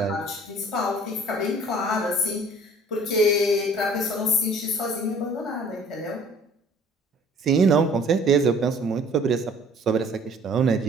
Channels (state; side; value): normal; both; correlation 0.53